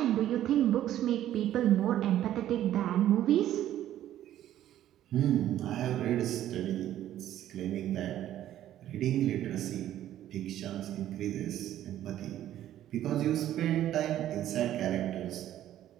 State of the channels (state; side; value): quieter; left; 12.3 dB